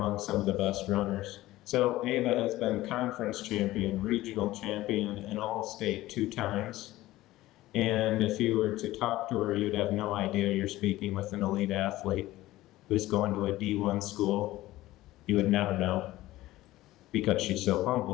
some of the best runners. So Ava has been conference champion, regional champion, and all-state 2 times. And if you were to talk to her, you'd have no idea you're speaking with an elite athlete who's going to a D1 school. You would never know because she's so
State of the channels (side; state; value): right; quieter; 16.7 dB